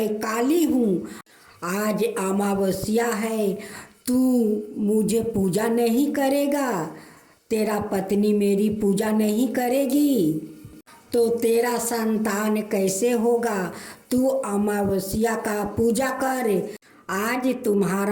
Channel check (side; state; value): both; identical; correlation 1.00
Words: काली हूँ, आज अमावस्या है, तू मुझे पूजा नहीं करेगा, तेरा पत्नी मेरी पूजा नहीं करेगी तो तेरा संतान कैसे होगा? तू अमावस्या का पूजा कर। आज